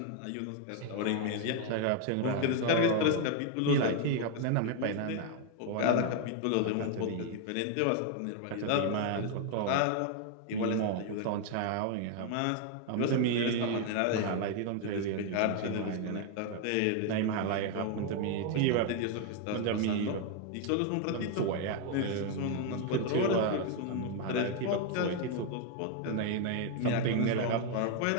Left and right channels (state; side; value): different; both; correlation 0.01